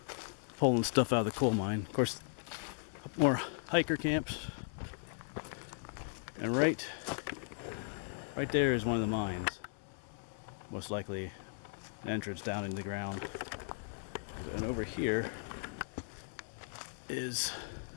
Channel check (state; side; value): silent; right; digital silence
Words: pulling stuff out of the coal mine. Of course, more hiker camps. And right there is one of the mines. Most likely an entrance down into the ground. And over here is,